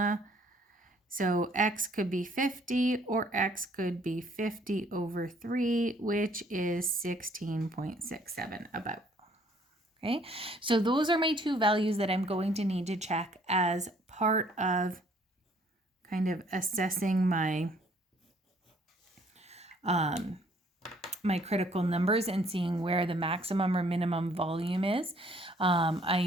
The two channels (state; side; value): normal; both; correlation 0.62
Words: So x could be 50 or x could be 50 over 3, which is 16.67 about. Okay, so those are my two values that I'm going to need to check as part of kind of assessing my my critical numbers and seeing where the maximum or minimum volume is. I